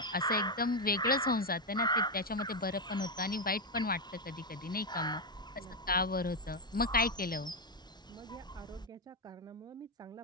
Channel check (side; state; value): both; normal; correlation 0.05